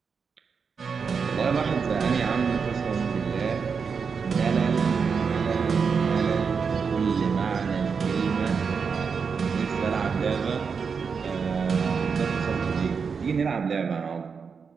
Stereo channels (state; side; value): quieter; left; 5.8 dB